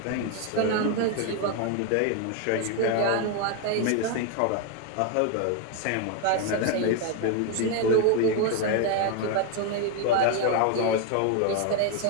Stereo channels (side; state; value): both; different; correlation 0.01